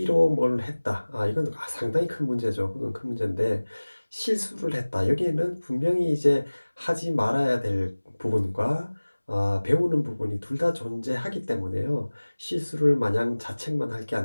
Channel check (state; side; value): inverted; both; correlation -1.00